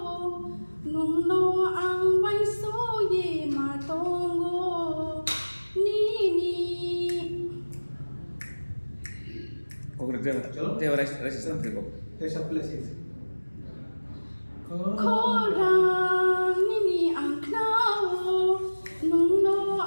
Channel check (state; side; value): inverted; both; correlation -1.00